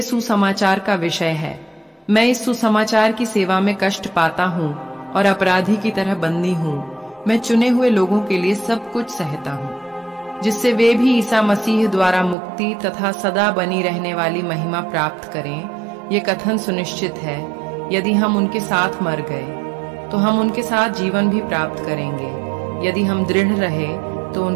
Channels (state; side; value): drops out; left; at 12.4 s